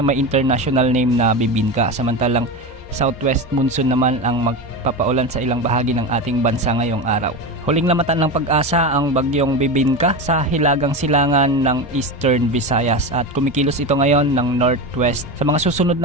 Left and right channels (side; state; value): left; noise; hum, 22 dB below the sound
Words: international name na Bibinka. Samantalang southwest monsoon naman ang magpapaulan sa ilang bahagi ng ating bansa ngayong araw. Huling lamatan ng pag-asa ang bagyong Bibinka sa hilagang silangan ng Eastern Visayas at kumikilos ito ngayon ng northwest. Sa mga susunod